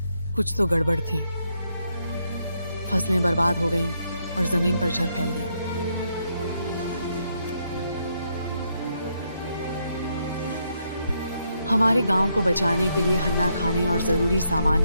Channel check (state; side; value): inverted; both; correlation -0.77